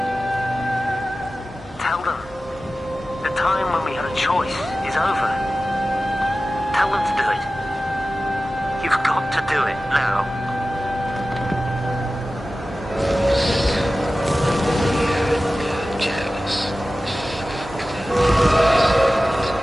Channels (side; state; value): both; normal; correlation 0.95